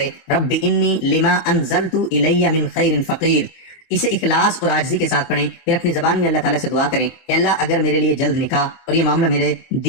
رب انی لما انزلت الی من خیر فقیر۔ اسے اخلاص اور عاجزی کے ساتھ پڑھیں، پھر اپنی زبان میں اللہ تعالیٰ سے دعا کریں کہ اللہ اگر میرے لیے جلد نکاح اور یہ معاملہ میرے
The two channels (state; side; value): late; right; 24 ms